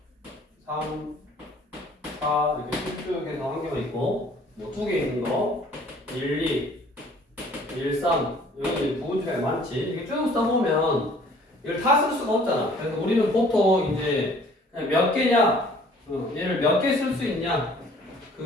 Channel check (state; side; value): normal; both; correlation 0.55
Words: 3, 4 이렇게 쭉 해서 한 개만 있고, 뭐 두 개 있는 거, 1, 2, 1, 3 여기 부분집합이 많지. 이렇게 쭉 써보면 이걸 다 쓸 수가 없잖아. 그래서 우리는 보통 이제 그냥 몇 개냐, 얘를 몇 개 쓸 수 있냐,